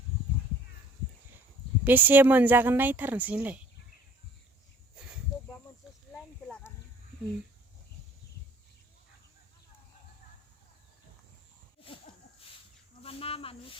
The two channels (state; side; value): normal; both; correlation 0.54